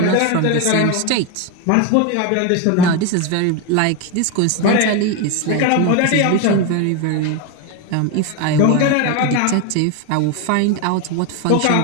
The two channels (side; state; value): both; different; correlation 0.02